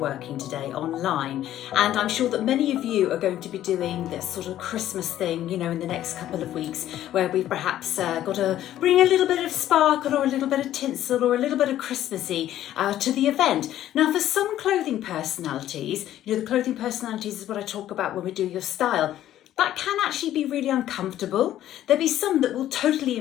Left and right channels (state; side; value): quieter; right; 12.5 dB